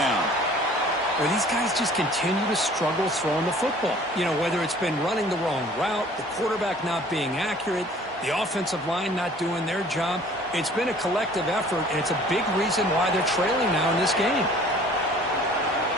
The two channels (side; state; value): both; normal; correlation 0.51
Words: Well, these guys just continue to struggle throwing the football. You know, whether it's been running the wrong route, the quarterback not being accurate, the offensive line not doing their job. It's been a collective effort, and it's a big reason why they're trailing now in this game.